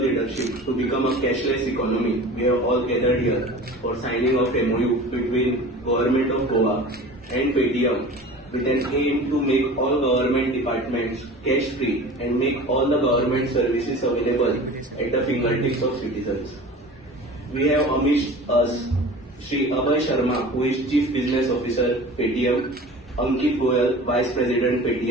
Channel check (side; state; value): both; normal; correlation 0.38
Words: to become a cashless economy, we have all gathered here for signing of MOU between Government of Goa and Paytm with an aim to make all government departments cash free and make all the government services available at the fingertips of citizens. We have amidst us Shri Abhay Sharma, who is Chief Business Officer Paytm, Ankit Goyal, Vice President